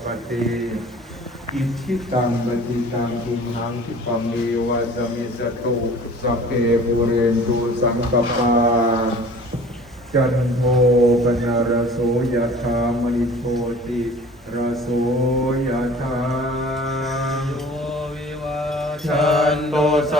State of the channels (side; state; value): both; normal; correlation 0.46